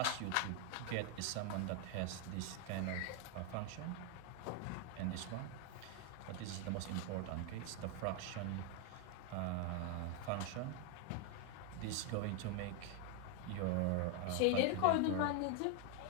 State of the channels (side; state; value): both; different; correlation 0.01